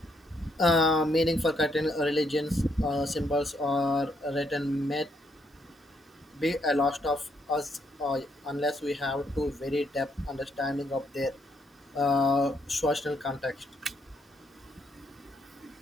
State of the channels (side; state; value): both; normal; correlation 0.74